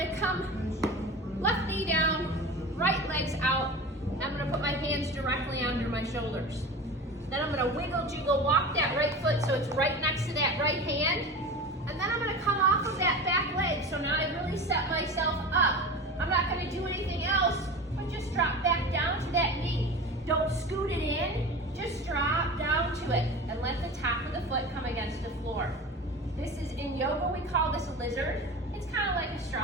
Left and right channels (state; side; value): normal; both; correlation 0.32